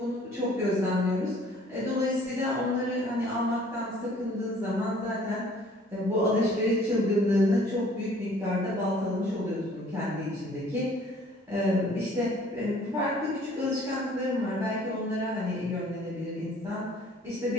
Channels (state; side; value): normal; both; correlation 0.55